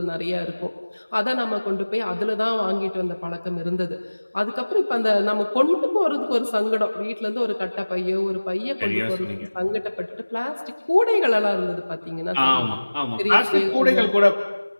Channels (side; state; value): both; inverted; correlation -1.00